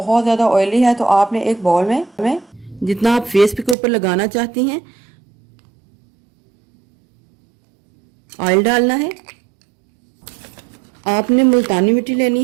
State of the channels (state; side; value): drops out; left; at 3.8 s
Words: ज़्यादा ऑयली है तो आपने एक बाउल में जितना आप फेस के ऊपर लगाना चाहती हैं ऑयल डालना है। आपने मुल्तानी मिट्टी लेनी